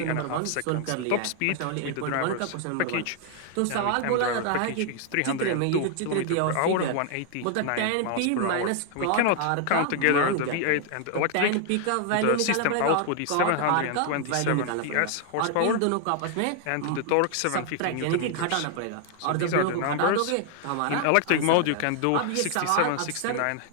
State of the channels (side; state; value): both; different; correlation 0.00